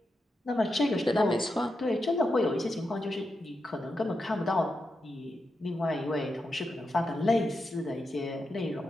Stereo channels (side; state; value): both; normal; correlation 0.87